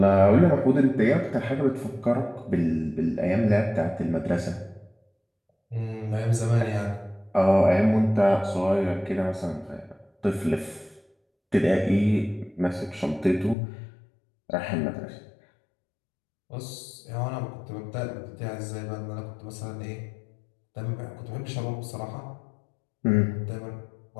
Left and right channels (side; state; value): right; drops out; at 13.6 s